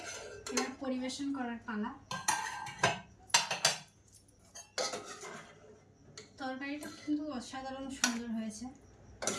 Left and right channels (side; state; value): both; identical; correlation 1.00